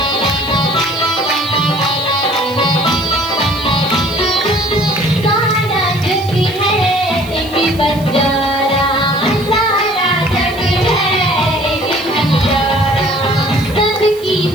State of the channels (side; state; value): right; noise; hiss, 20 dB below the sound